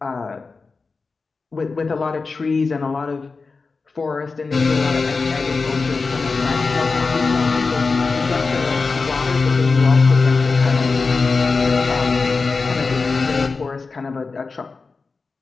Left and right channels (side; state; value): right; quieter; 4.3 dB